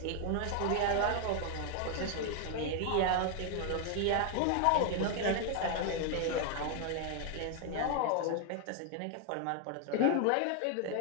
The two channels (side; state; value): both; different; correlation 0.00